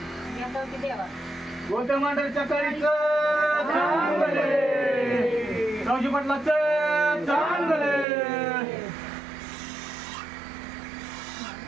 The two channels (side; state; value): left; drops out; at 8.1 s